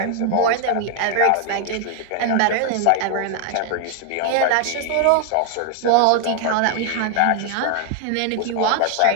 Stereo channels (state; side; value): different; both; correlation 0.00